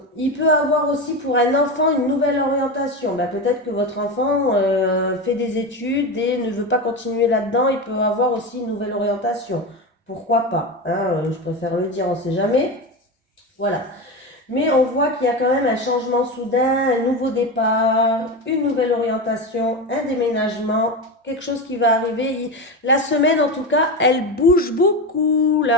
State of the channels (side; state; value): both; normal; correlation 0.20